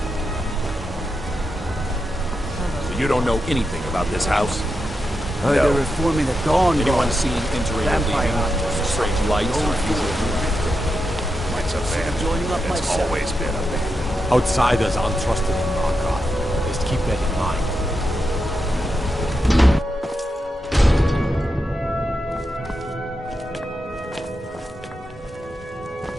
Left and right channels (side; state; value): both; normal; correlation 0.87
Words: So you don't know anything about this house? They're reforming the dawn. Anyone seen entering or leaving? Strange lights or unusual It's a bad. It's always been a bad. Outsiders aren't trusted in Markarth. Just keep that in mind.